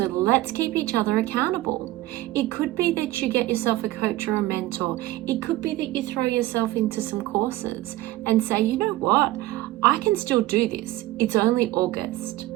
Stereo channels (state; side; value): quieter; left; 17.0 dB